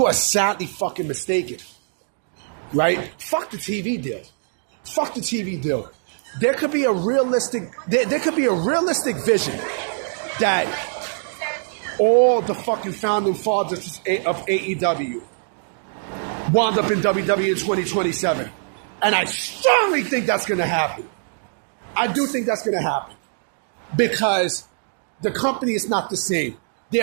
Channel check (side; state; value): left; silent; digital silence